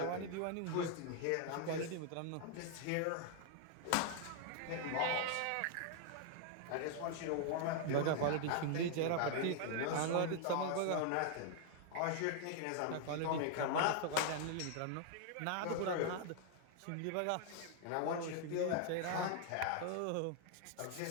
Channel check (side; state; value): both; different; correlation 0.00